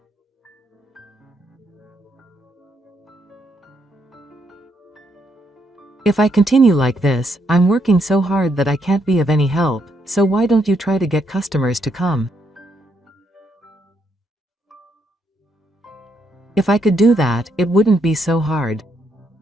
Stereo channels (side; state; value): both; normal; correlation 0.76